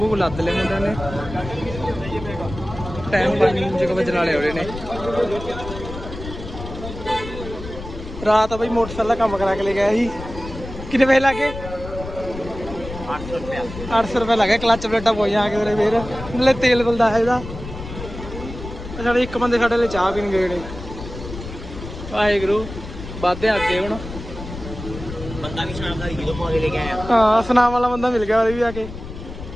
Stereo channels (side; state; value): left; noise; rumble, 11 dB below the sound